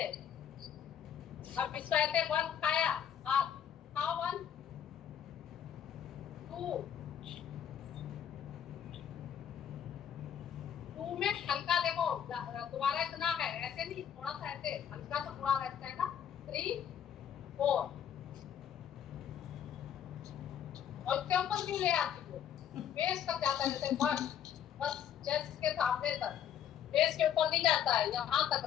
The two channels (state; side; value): quieter; right; 9.2 dB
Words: अब इसको ऐसे 1 खाया, हाथ खाओ, 1 2 2 में हल्का देखो, तुम्हारा इतना है, ऐसे नहीं, थोड़ा सा ऐसे हल्का सा पूरा रहता है ना, 3 4, और इसके ऊपर क्यों ले आती हो, फेस तक जाता है, जैसे बस चेस्ट के सामने तक, फेस के ऊपर नहीं जाता है, यहाँ तक